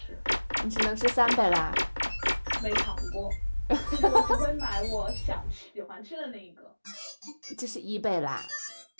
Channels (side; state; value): both; inverted; correlation -1.00